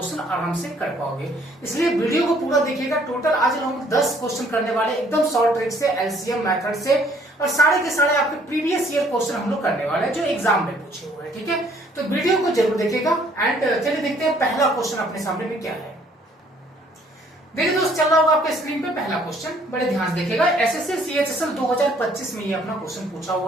आराम से कर पाओगे। इसलिए वीडियो को पूरा देखिएगा। टोटल आज हम 10 क्वेश्चन करने वाले, एकदम शॉर्ट ट्रिक से, एलसीएम मेथड से, और सारे के सारे आपके प्रीवियस ईयर क्वेश्चन हम लोग करने वाले हैं जो एग्जाम में पूछे हुए हैं। ठीक है, तो वीडियो को जरूर देखिएगा। एंड चलिए देखते हैं पहला क्वेश्चन अपने सामने में क्या है। देखिए दोस्त, चल रहा होगा आपके स्क्रीन पे पहला क्वेश्चन, बड़े ध्यान से देखिएगा। एसएससी सीएचएसएल 2025 में ये अपना क्वेश्चन पूछा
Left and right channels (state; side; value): normal; both; correlation 0.62